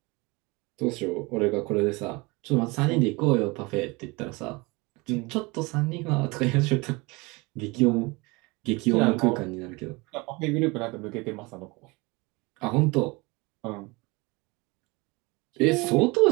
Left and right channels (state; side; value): quieter; left; 25.4 dB